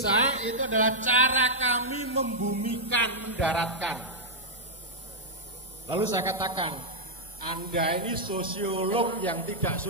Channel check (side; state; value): both; normal; correlation -0.06